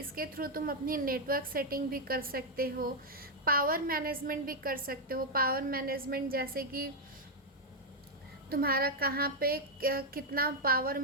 थ्रू तुम अपनी नेटवर्क सेटिंग भी कर सकते हो, पावर मैनेजमेंट भी कर सकते हो। पावर मैनेजमेंट जैसे कि तुम्हारा कहाँ पे कितना पावर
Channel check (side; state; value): both; normal; correlation 0.00